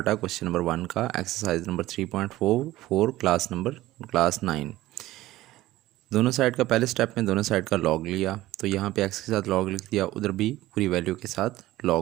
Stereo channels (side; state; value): left; quieter; 16.4 dB